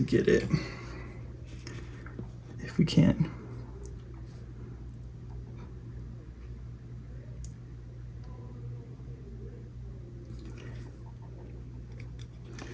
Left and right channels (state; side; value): identical; both; correlation 1.00